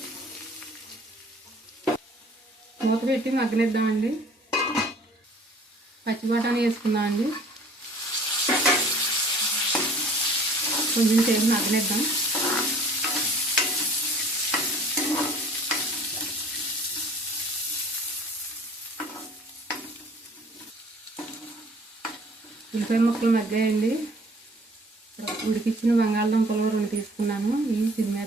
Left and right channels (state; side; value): normal; both; correlation 0.51